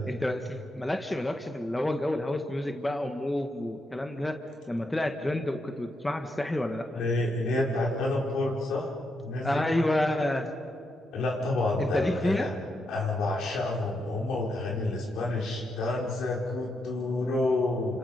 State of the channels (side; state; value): both; normal; correlation 0.82